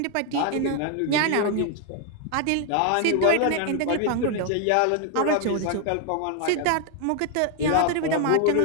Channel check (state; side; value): different; both; correlation 0.00